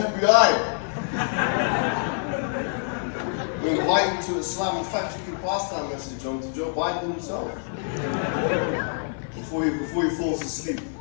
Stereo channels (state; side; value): silent; right; 55 dB below the other